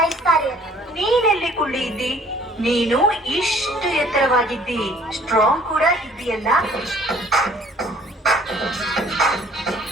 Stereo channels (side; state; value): both; normal; correlation 0.56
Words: ನೀನೆಲ್ಲಿ ಕುಳ್ಳಿ ಇದ್ದಿ? ನೀನು ಇಷ್ಟು ಎತ್ತರವಾಗಿದ್ದಿ, ಸ್ಟ್ರಾಂಗ್ ಕೂಡ ಇದ್ದೀಯಲ್ಲ.